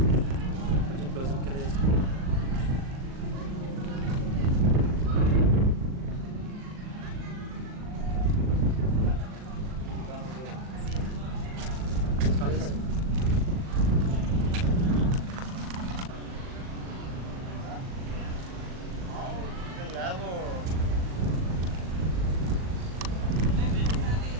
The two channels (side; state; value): left; late; 39 ms